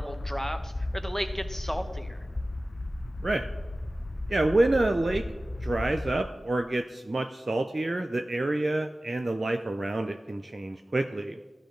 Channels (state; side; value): normal; both; correlation 0.96